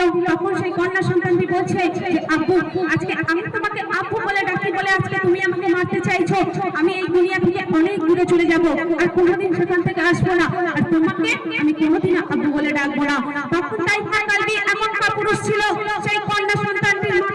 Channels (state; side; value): identical; both; correlation 1.00